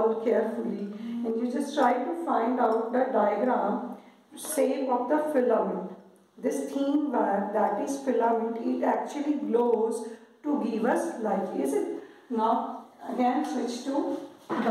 carefully and you just try to find out the diagram shape of the filament. This thin wire, that is filament, it actually glows to give us light. Is it? Now again switch to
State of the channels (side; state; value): both; identical; correlation 1.00